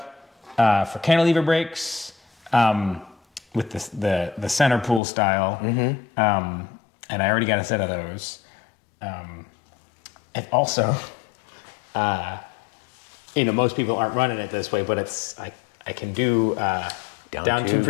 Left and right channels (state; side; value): drops out; right; at 5.0 s